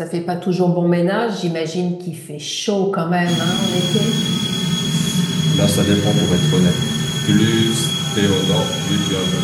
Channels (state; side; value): identical; both; correlation 1.00